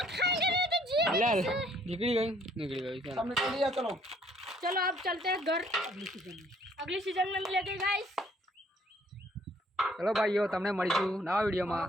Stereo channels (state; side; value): normal; both; correlation 0.62